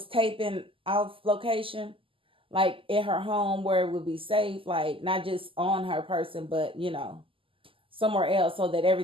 taping off location, like at her home where it would be safe, like not just on her person, but somewhere else, so that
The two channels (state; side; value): late; left; 0.25 ms